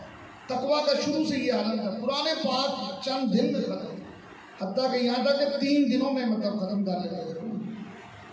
تقویٰ کا شروع سے یہ عالم تھا۔ قرآن پاک چند دن میں ختم، حتیٰ کہ یہاں تک کہ 3 دنوں میں ختم کر لیتے تھے۔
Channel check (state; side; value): identical; both; correlation 1.00